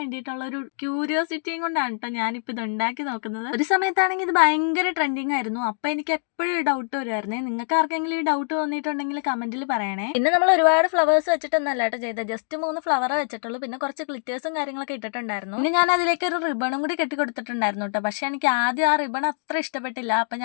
ഒരു ക്യൂരിയോസിറ്റിയും കൊണ്ടാണ് കേട്ടോ ഞാനിപ്പോൾ ഇത് ഉണ്ടാക്കി നോക്കുന്നത്. ഒരു സമയത്താണെങ്കിൽ ഇത് ഭയങ്കര ട്രെൻഡിങ് ആയിരുന്നു. അപ്പൊ എനിക്ക് എപ്പോഴും ഡൗട്ട് വരുമായിരുന്നേ. നിങ്ങൾക്ക് ആർക്കെങ്കിലും ഈ ഡൗട്ട് തോന്നിയിട്ടുണ്ടെങ്കിൽ കമന്റിൽ പറയണേ. പിന്നെ നമ്മൾ ഒരുപാട് ഫ്ലവേഴ്സ് വെച്ചിട്ടൊന്നല്ല കേട്ടോ ചെയ്തത്. ജസ്റ്റ് 3 ഫ്ലവർ വെച്ചിട്ടുള്ളൂ. പിന്നെ കുറച്ച് ഗ്ലിറ്റേഴ്സും കാര്യങ്ങളൊക്കെ ഇട്ടിട്ടുണ്ടായിരുന്നു. പിന്നെ ഞാൻ അതിലേക്ക് ഒരു റിബണും കൂടി കെട്ടി കൊടുത്തിട്ടുണ്ടായിരുന്നു കേട്ടോ. പക്ഷെ എനിക്ക് ആദ്യം ആ റിബൺ അത്ര ഇഷ്ടപ്പെട്ടില്ല. അപ്പൊ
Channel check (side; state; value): right; silent; digital silence